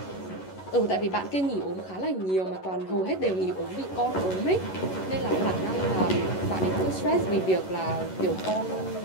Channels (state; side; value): late; right; 11 ms